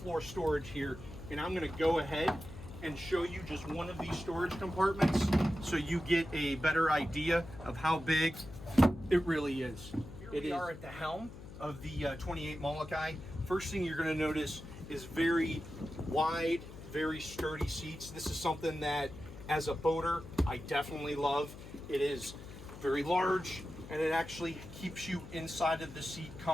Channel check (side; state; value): left; noise; hum, 14 dB below the sound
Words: storage here, and I'm going to go ahead and show you just one of these storage compartments so you get a better idea of how big it really is. Here we are at the helm of the 28 Molokai. First thing you're going to notice is very wide, very sturdy seats. This is something that as a boater, I definitely love. It is very large and it actually keeps you inside of the seat